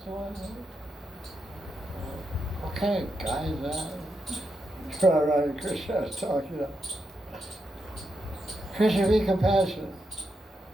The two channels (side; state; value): both; normal; correlation 0.84